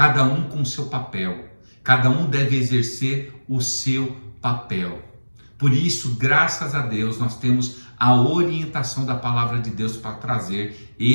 um com o seu papel. Cada um deve exercer o seu papel. Por isso, graças a Deus, nós temos a orientação da palavra de Deus para trazer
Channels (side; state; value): both; inverted; correlation -1.00